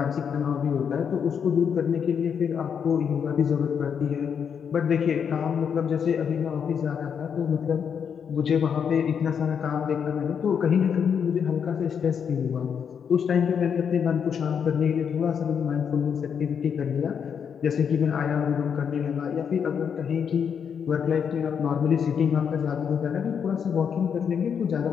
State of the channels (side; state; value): right; quieter; 7.3 dB